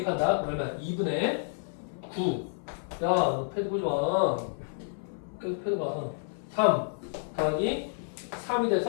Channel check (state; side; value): silent; right; 58 dB below the other